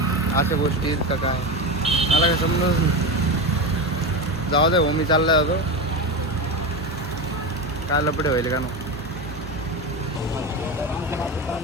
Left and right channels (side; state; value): both; normal; correlation 0.19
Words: अशा गोष्टी आहेत का काय, मला काय समजत नाही. जाऊ दे भाऊ, मी चालला होतो. काय लपडे व्हायले का ना.